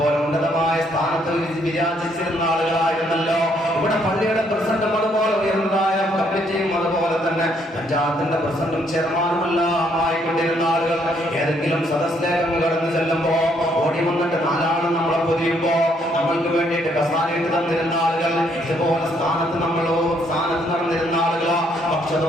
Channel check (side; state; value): both; normal; correlation 0.70